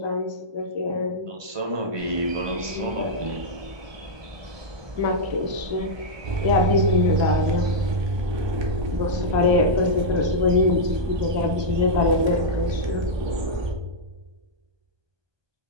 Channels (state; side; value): late; left; 1.2 ms